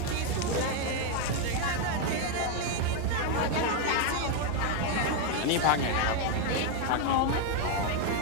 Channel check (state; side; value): different; both; correlation 0.01